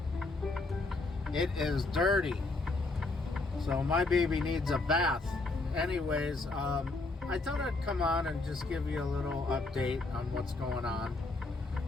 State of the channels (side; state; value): right; quieter; 3.3 dB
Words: It is dirty. So my baby needs a bath. Anyways, I thought I'd come on and just give you a little update on what's going on.